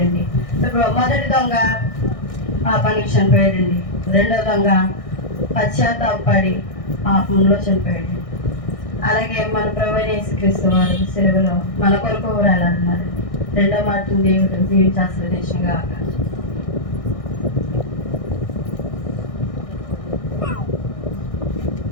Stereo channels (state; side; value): late; right; 1.6 ms